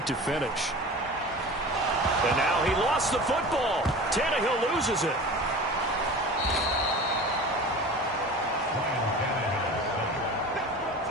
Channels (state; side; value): normal; both; correlation 0.36